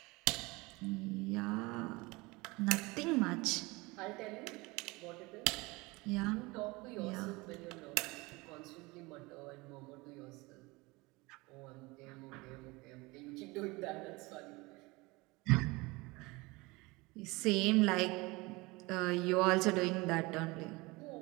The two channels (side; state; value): left; quieter; 23.7 dB